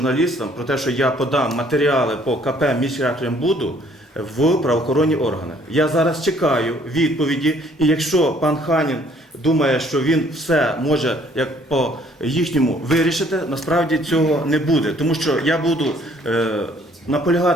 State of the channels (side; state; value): both; normal; correlation 0.61